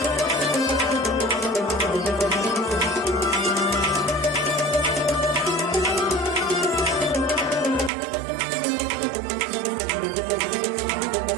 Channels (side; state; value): left; drops out; at 7.9 s